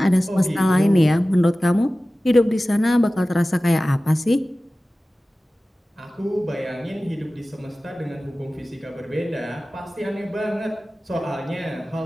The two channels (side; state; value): both; normal; correlation 0.96